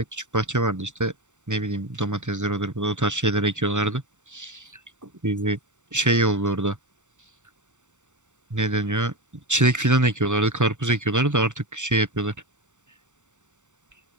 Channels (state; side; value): late; left; 0.85 ms